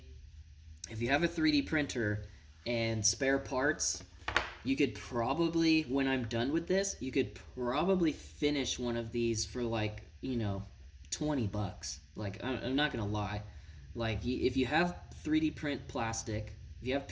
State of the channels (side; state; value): both; identical; correlation 1.00